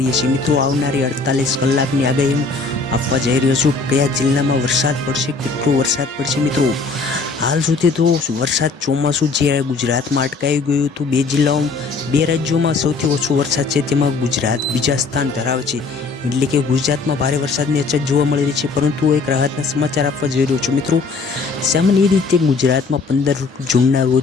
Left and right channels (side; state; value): right; quieter; 4.2 dB